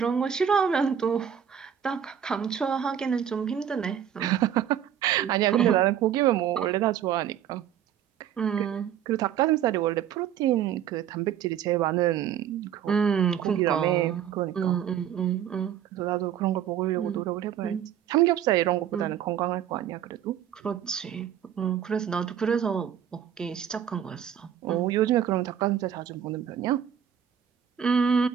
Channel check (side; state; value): left; quieter; 9.4 dB